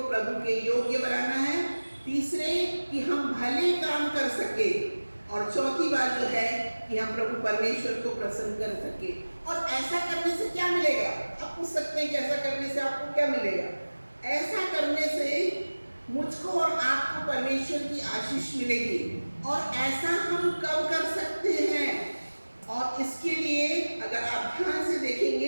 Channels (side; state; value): both; inverted; correlation -1.00